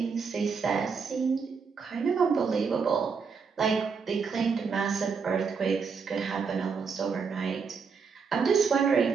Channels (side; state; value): left; quieter; 5.6 dB